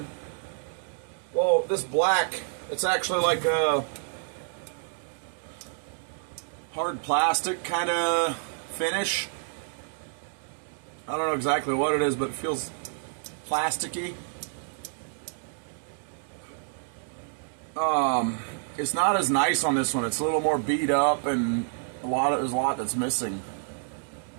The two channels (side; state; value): left; silent; digital silence